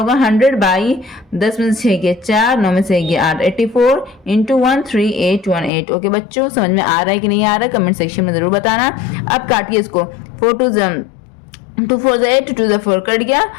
100/10 में से 6 गए 4, 9 में से 1 8, 84 इंटू 13818, ओके बच्चों। समझ में आ रहा है कि नहीं आ रहा है, कमेंट सेक्शन में जरूर बताना। अब काटिए इसको, 4 2 2 4 से 8, 2 से 4 कट गया,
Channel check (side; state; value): right; drops out; at 5.7 s